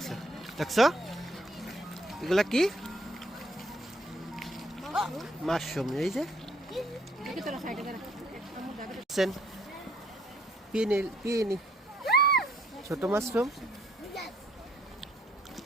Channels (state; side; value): normal; both; correlation 0.66